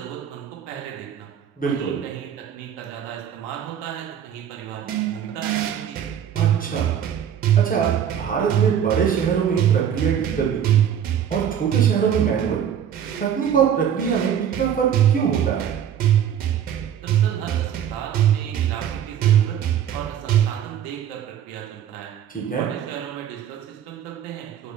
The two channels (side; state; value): left; quieter; 9.2 dB